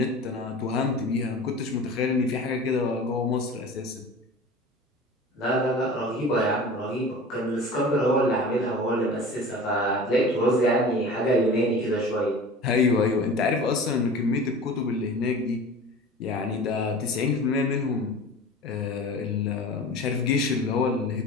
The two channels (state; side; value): normal; both; correlation 0.38